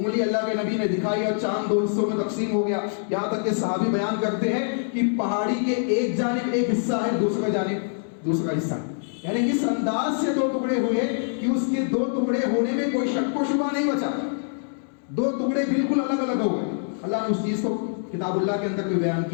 اللہ کے نبی نے دکھائی اور چاند دو حصوں میں تقسیم ہو گیا، یہاں تک کہ صحابی بیان کرتے ہیں کہ پہاڑی کے ایک جانب ایک حصہ ہے، دوسرا جانب دوسرا حصہ ہے، یعنی اس انداز سے دو ٹکڑے ہوئے کہ اس کے دو ٹکڑے ہونے میں کوئی شک و شبہ نہیں بچا، دو ٹکڑے بالکل الگ الگ ہو گئے۔ اللہ نے اس چیز کو کتاب اللہ کے اندر بھی بیان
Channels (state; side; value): silent; right; digital silence